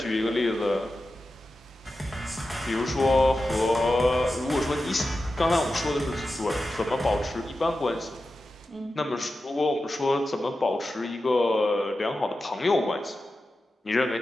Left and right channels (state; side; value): normal; both; correlation 0.92